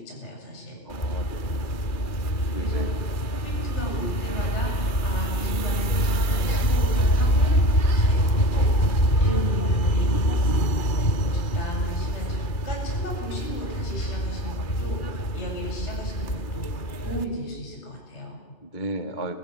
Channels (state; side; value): late; right; 2.4 ms